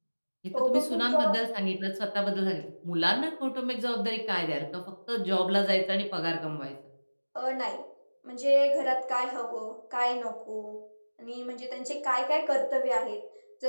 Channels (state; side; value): inverted; both; correlation -1.00